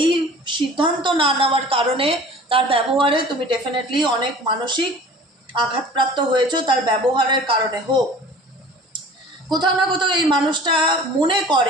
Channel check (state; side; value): normal; both; correlation 0.44